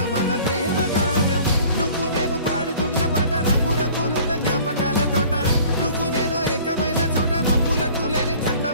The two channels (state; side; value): inverted; both; correlation -0.49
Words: మన ప్రేమ కావ్యం నువ్వు నేను పాడుతున్న పాట రంగు రంగులున్న జ్ఞాపకాల తోట నువ్వు నేను ఏకమైన చోట మబ్బులట్టు లేని